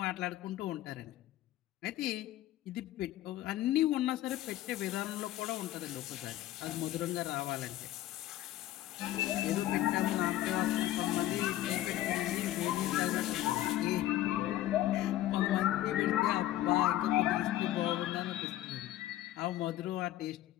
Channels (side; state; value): right; quieter; 14.3 dB